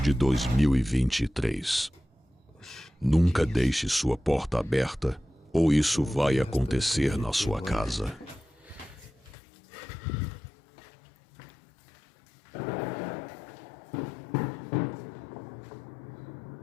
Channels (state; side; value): drops out; right; at 9.3 s